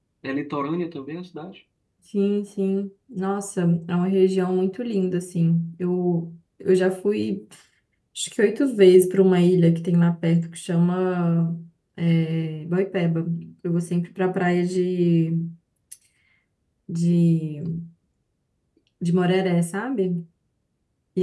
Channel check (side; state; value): both; identical; correlation 1.00